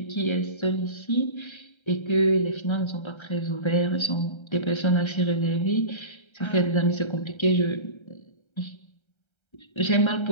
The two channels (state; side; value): late; right; 1.3 ms